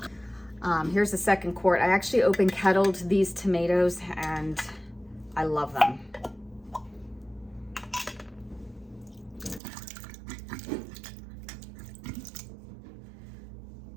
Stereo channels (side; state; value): left; drops out; at 9.6 s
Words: Here's the second quart. I actually open kettled these tomatoes and I love them.